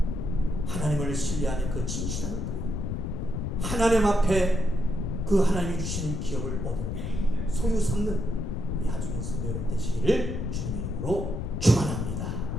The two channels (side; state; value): left; noise; rumble, 2 dB below the sound